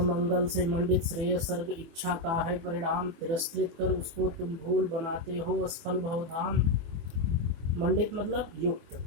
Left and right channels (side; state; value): left; late; 24 ms